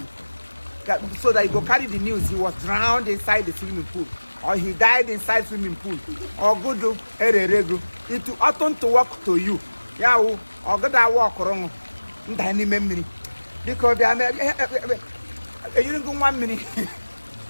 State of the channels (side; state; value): both; inverted; correlation -1.00